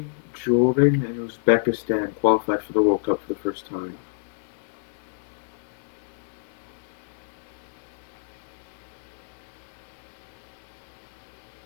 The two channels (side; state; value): right; silent; digital silence